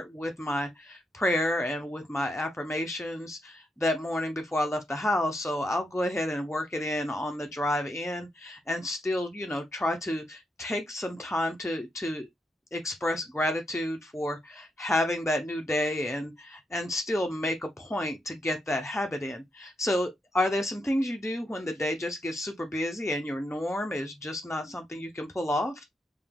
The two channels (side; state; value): both; normal; correlation 0.81